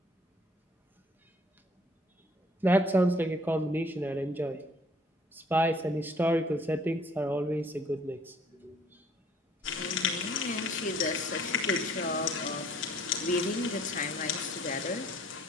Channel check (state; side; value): normal; both; correlation 0.57